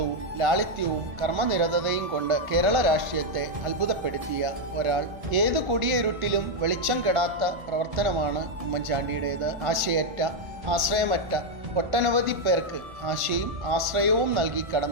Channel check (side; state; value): left; late; 1.5 ms